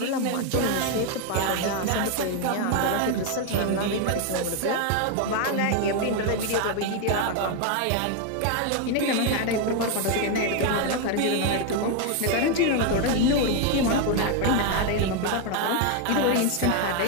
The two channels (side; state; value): both; different; correlation 0.01